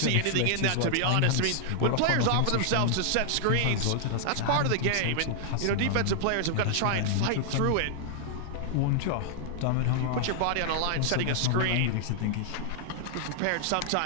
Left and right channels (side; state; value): both; different; correlation -0.01